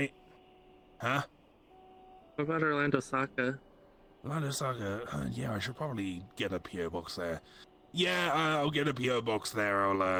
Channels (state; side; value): identical; both; correlation 1.00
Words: Huh? What about Orlando Saka? Orlando Saga. Yeah, I should probably get a PO box there. Yeah, I'll get a PO box there.